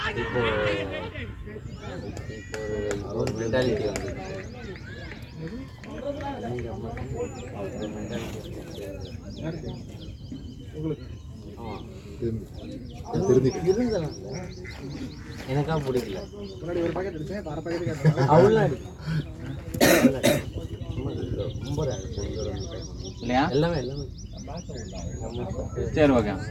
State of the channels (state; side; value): identical; both; correlation 1.00